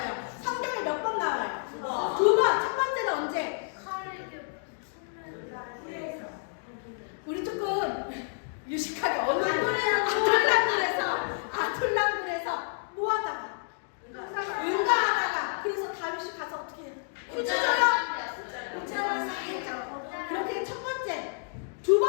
성경에 몇 번 나와요? 2번. 첫 번째는 언제? 우리 조금 유식하게 어느 아툴랑굴에서 뭐 하다가 응가하다가 그래서 다윗이 가서 어떻게 해요? 휴지 줘요? 우체를 살짝. 그렇게 첫 번째. 두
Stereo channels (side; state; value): right; silent; digital silence